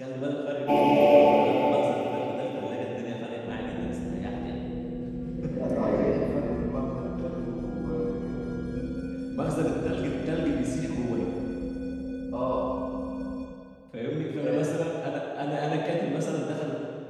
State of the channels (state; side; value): identical; both; correlation 1.00